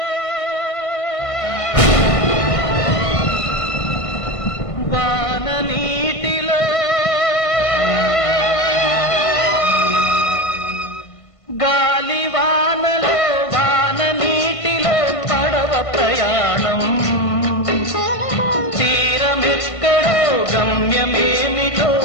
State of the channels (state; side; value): late; right; 1.5 ms